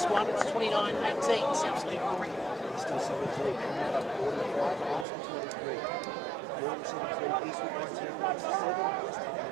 one. It's 29-18. South Sydney Warringah. Still 17, Arsenal 23. Northern 73, Eastwood 19, West 7, West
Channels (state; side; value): drops out; left; at 5.1 s